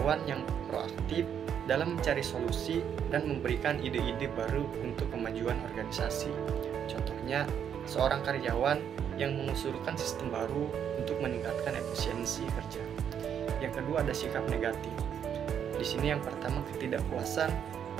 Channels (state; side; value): quieter; left; 8.6 dB